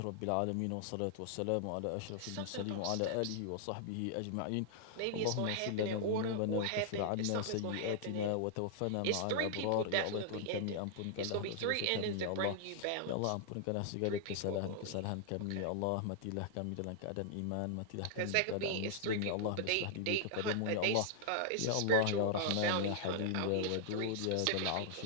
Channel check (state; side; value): different; both; correlation -0.01